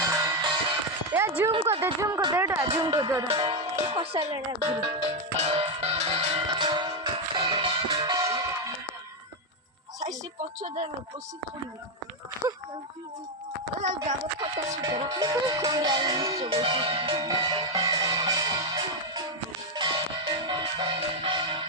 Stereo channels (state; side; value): normal; both; correlation 0.05